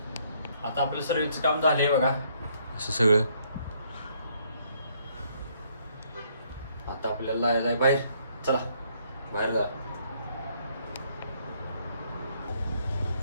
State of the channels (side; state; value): both; inverted; correlation -0.68